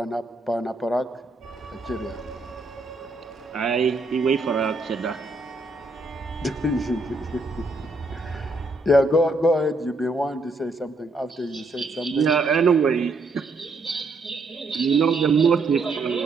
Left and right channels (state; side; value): quieter; left; 3.1 dB